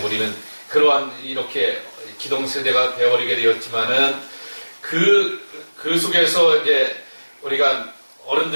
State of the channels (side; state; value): both; inverted; correlation -1.00